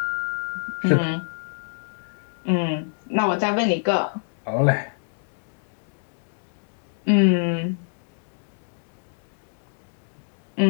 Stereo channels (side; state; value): right; silent; digital silence